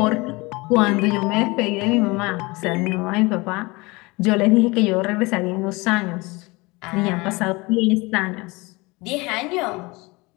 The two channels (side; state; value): right; quieter; 24.5 dB